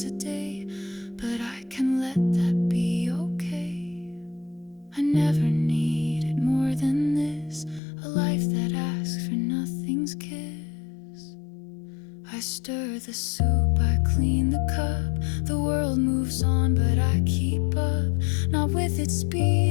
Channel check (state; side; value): drops out; right; at 7.8 s